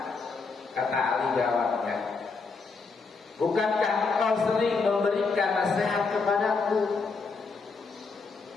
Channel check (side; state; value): right; quieter; 4.5 dB